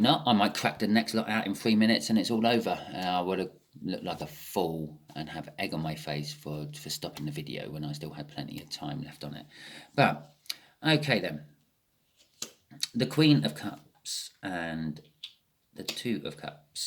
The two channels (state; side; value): identical; both; correlation 1.00